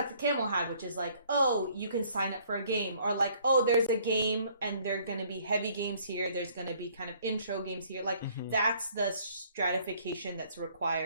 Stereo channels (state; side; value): inverted; both; correlation -0.61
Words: Camel had, which is like, oh, you can sign up for a game, or like, oh, there's a game and there are going to be heavy games here, there's going to be kind of intro games here, like that's the stratification that's